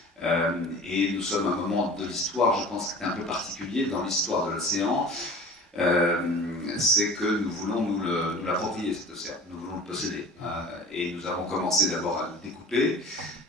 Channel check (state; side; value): normal; both; correlation 0.40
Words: Et nous sommes à un moment de l'histoire, je pense, qui est un peu particulier dans l'histoire de l'océan. C'est que nous voulons nous l'approprier, cet océan. Nous voulons le posséder. Et nous avons commencé d'abord à le découper.